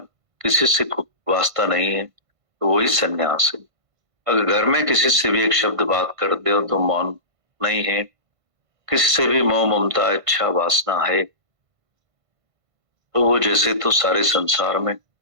किसी से वास्ता नहीं है, तो वही सन्यास है। अगर घर में किसी से भी एक शब्द बात कर दे तो मौन नहीं है, किसी से भी मोह ममता इच्छा वासना है, तो वो जैसे तो सारे संसार में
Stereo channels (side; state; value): left; late; 1.5 ms